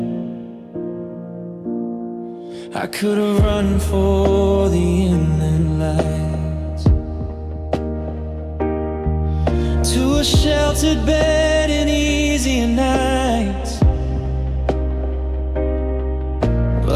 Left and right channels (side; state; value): both; identical; correlation 1.00